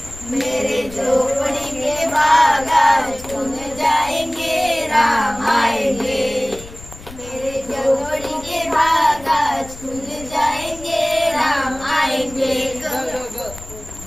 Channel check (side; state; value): left; noise; rumble, 17 dB below the sound